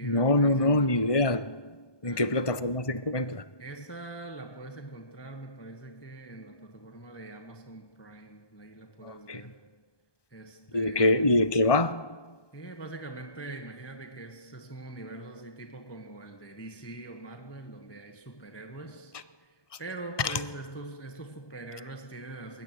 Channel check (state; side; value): late; right; 1.2 ms